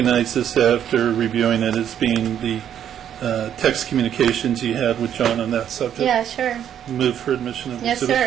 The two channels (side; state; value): left; quieter; 9.7 dB